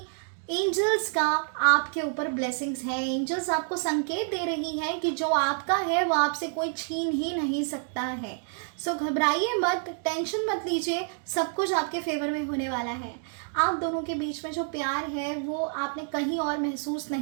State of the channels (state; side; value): silent; left; 59 dB below the other